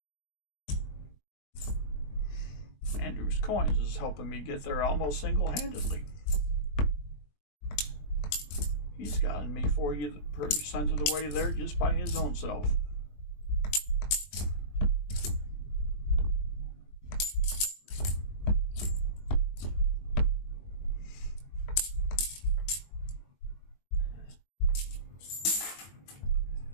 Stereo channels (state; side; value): late; right; 21 ms